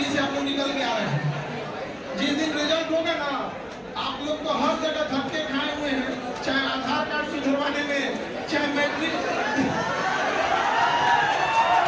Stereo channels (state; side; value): identical; both; correlation 1.00